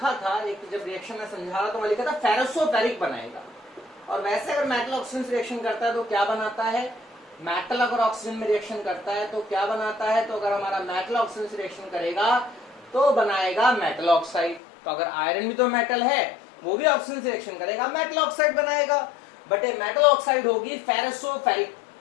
था, एक जब रिएक्शन में समझा रहा तो वहां लिखा था फेरोसोफेरिक बनाएगा। और वैसे अगर मेटल ऑक्सीजन से रिएक्शन करता है तो क्या बनाता है, मेटल अगर ऑक्सीजन में रिएक्शन करता है तो क्या बनाता है, तो अगर हमारा मेटल ऑक्सीजन से रिएक्शन करेगा तो बनाएगा मेटल ऑक्साइड। तो अगर आयरन भी तो मेटल है, वो भी ऑक्सीजन से रिएक्शन करेगा, मेटल ऑक्साइड बनाएगा। बट ये मेटल ऑक्साइड होगी फेरोसोफेरिक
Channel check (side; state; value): right; drops out; at 14.6 s